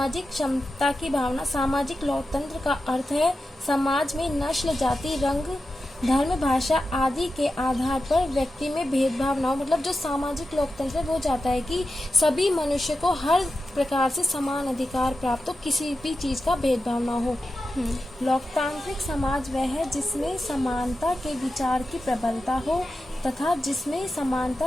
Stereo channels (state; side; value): normal; both; correlation 0.91